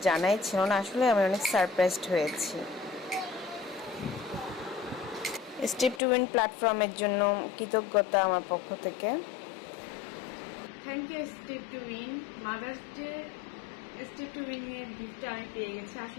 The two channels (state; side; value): drops out; right; at 6.0 s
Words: জানাই ছিল না। আসলে আমি অনেক সারপ্রাইজড হয়েছি। স্টেপ টু উইন প্ল্যাটফর্মের জন্য কৃতজ্ঞতা আমার পক্ষ থেকে। Thank you Step to Win. Mother's Day Step to Win এর গিফটটা আমি পেয়ে গেছি।